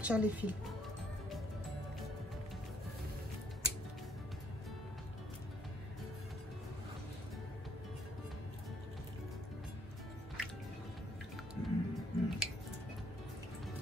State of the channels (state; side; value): normal; both; correlation 0.67